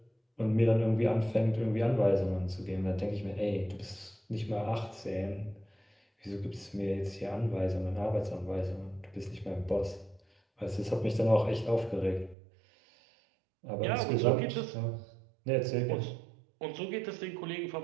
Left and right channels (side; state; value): left; drops out; at 12.4 s